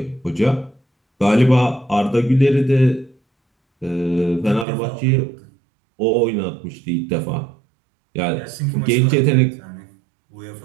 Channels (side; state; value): left; drops out; at 4.7 s